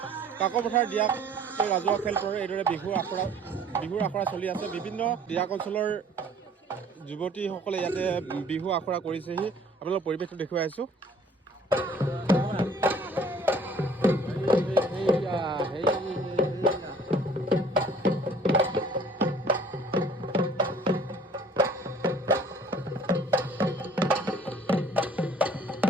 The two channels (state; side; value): normal; both; correlation 0.53